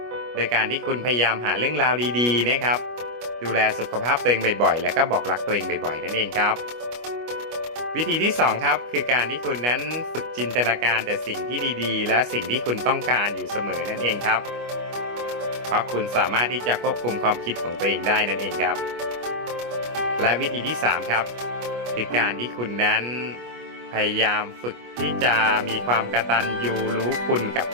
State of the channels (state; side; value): late; left; 25 ms